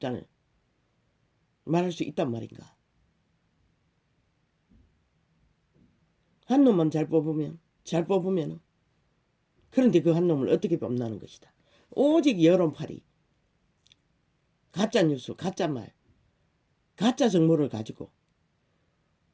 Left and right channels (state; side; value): identical; both; correlation 1.00